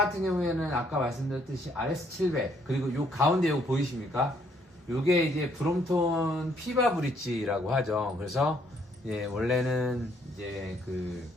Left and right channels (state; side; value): normal; both; correlation 0.67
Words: 경우에는 아까 말씀드렸듯이 RS700, 그리고 요 가운데 요거 보이십니까? 요게 이제 브롬톤 피바 브릿지라고 하죠. 그래서 원래는 이제 그